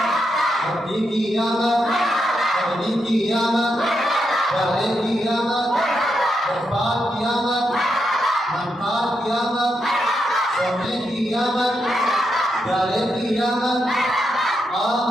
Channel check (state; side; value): normal; both; correlation 0.83